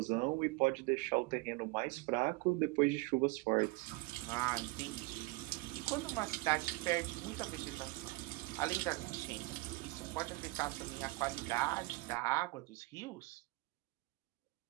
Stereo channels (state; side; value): quieter; left; 23.8 dB